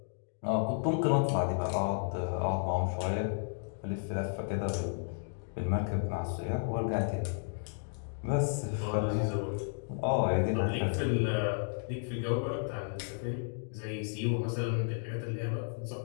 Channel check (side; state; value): right; silent; digital silence